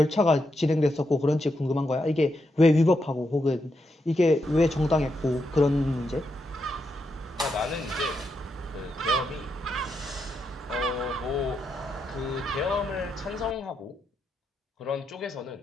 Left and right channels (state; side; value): normal; both; correlation 0.83